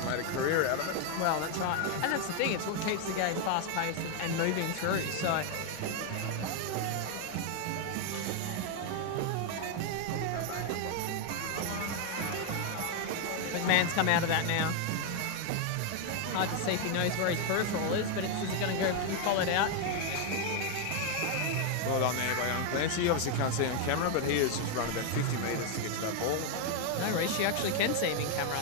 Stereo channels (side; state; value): both; different; correlation 0.01